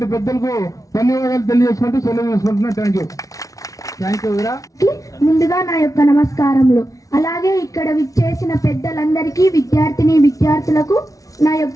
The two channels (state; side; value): late; right; 0.17 ms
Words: పెద్దలకు ధన్యవాదాలు తెలియజేసుకుంటూ సెలవు చేసుకుంటున్నా. Thank you. ముందుగా నా యొక్క నమస్కారములు. అలాగే ఇక్కడ విచ్చేసిన పెద్దలందరికీ విద్యార్థులకు నా